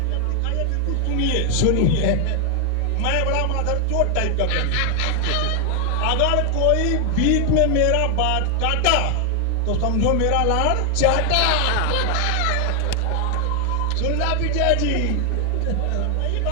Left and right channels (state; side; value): different; both; correlation 0.00